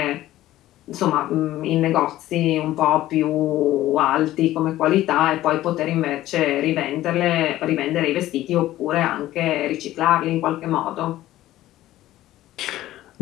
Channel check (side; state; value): right; quieter; 14.8 dB